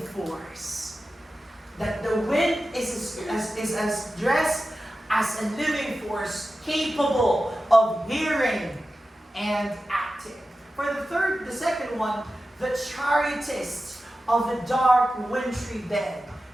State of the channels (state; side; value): normal; both; correlation 0.93